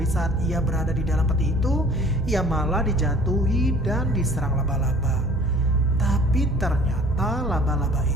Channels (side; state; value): both; normal; correlation 0.50